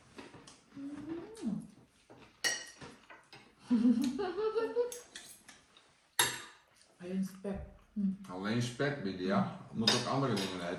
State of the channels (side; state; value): both; identical; correlation 1.00